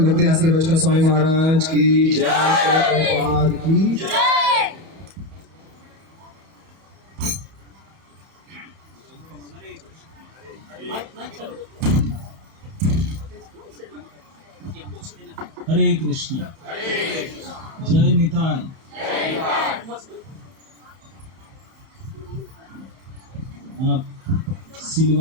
भक्ति आश्रय वैष्णव स्वामी महाराज की जय, प्रभुपाद की जय। हरे कृष्ण। जय निताय। आप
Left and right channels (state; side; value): late; left; 31 ms